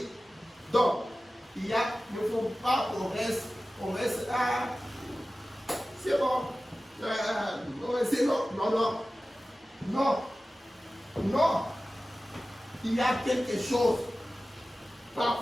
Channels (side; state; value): both; normal; correlation 0.96